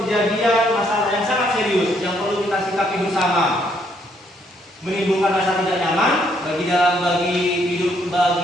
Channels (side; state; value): both; normal; correlation 0.71